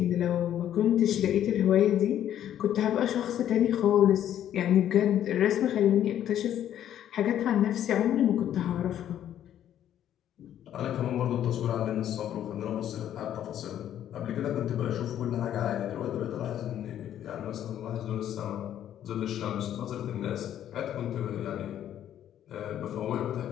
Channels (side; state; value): right; quieter; 10.9 dB